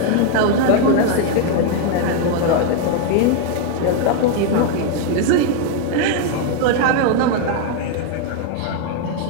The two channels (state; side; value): different; both; correlation 0.01